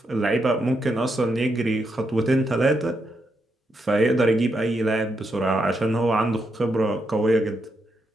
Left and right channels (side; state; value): both; normal; correlation 0.81